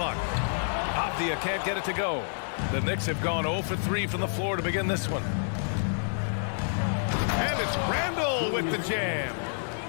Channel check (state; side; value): silent; right; digital silence